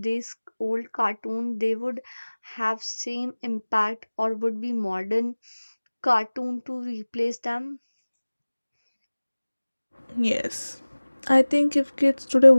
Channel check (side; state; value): both; inverted; correlation -1.00